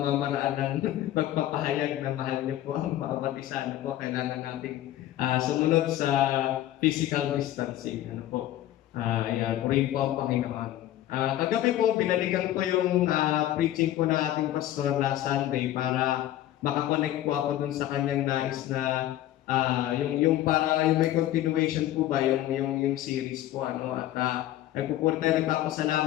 ng pagpapahayag na mahal niyo po ang bawat isa. Ano po, kailangan nating sumunod sa physical distancing. Ano po, yan, purihin po ang Panginoon. Kagabi po, binalikan ko yung preaching po ng ating pastor last Sunday para makakonect po ako dun sa kanyang nais na yung may continuation po ba yung series po at nagpupuri tayo,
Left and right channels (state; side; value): quieter; right; 13.6 dB